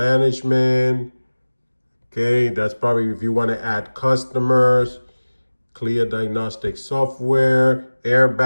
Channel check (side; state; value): both; inverted; correlation -1.00